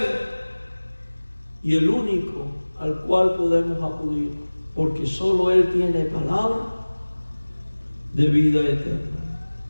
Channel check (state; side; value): inverted; both; correlation -1.00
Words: y el único al cual podemos acudir, porque solo Él tiene palabra de vida eterna.